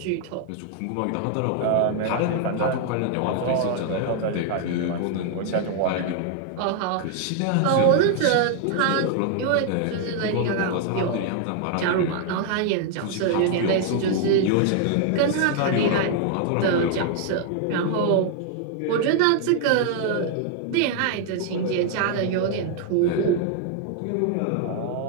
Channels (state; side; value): different; both; correlation 0.00